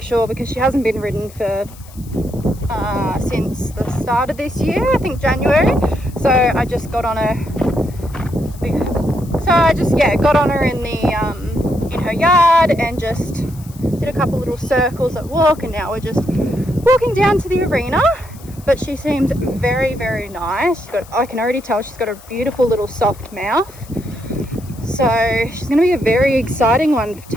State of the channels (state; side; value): noise; left; hiss, 22 dB below the sound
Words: sure, because she hasn't been ridden for since the start of this year, I think January. So I just got on her. Got on her in the in her yard and just did a couple little circles at walk, and now we're just walking down to the arena. But she seems very, very nice. I can already tell she's got a beautiful little soft mouth. So she's going to be a very exciting one